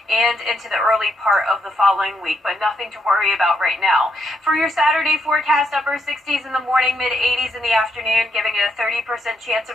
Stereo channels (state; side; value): normal; both; correlation 0.78